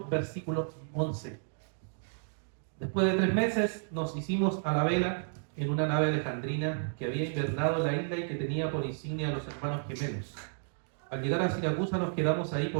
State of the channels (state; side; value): silent; left; digital silence